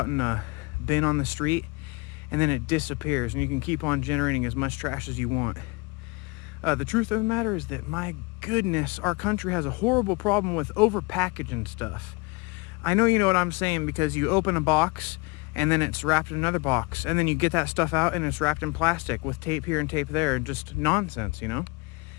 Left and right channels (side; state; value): right; quieter; 26.3 dB